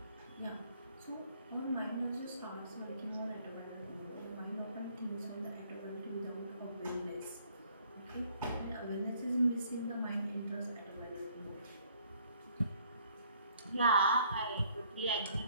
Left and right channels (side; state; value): both; inverted; correlation -0.63